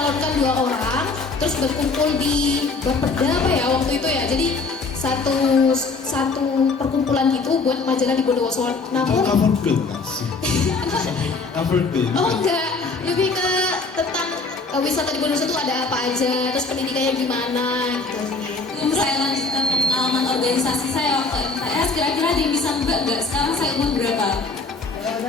2 orang, terus berkumpul di Bapeda apa ya waktu itu ya. Jadi satu perkumpulan gitu buat majalah di Bondowoso. Namun cover girl nggak sih? Cover girl. oh enggak, lebih ke tentang wisata di Bondowoso itu ada apa aja, terus pendidikannya gimana gitu sih. Saya lanjutkan ke pengalaman organisasi saya waktu MTS. Kira-kira ada yang bisa nebak nggak? Sekarang saya umur berapa?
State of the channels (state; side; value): quieter; right; 4.0 dB